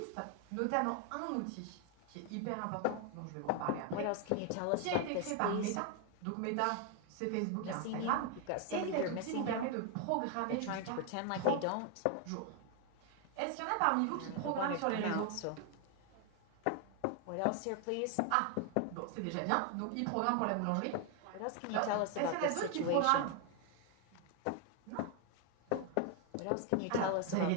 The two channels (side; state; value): both; different; correlation 0.01